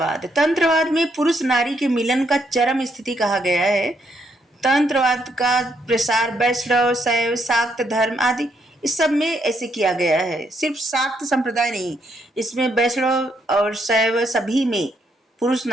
में पुरुष नारी के मिलन का चरम स्थिति कहा गया है। तंत्रवाद का प्रसार वैष्णव, शैव, शाक्त धर्म आदि इस सब में ऐसे किया गया है। सिर्फ शाक्त संप्रदाय नहीं, इसमें वैष्णव और शैव सभी में पुरुष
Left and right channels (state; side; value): normal; both; correlation 0.75